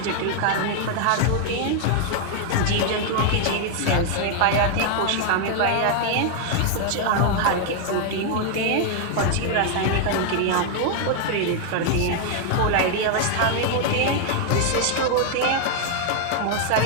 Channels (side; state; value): both; different; correlation 0.00